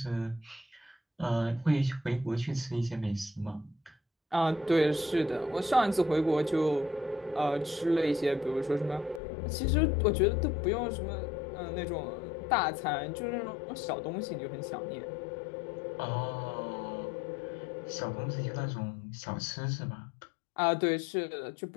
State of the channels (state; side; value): drops out; right; at 9.2 s